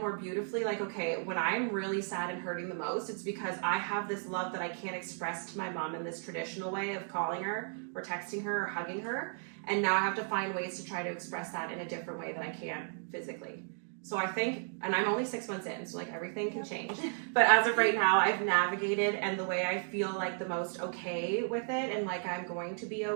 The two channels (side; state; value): left; silent; 55 dB below the other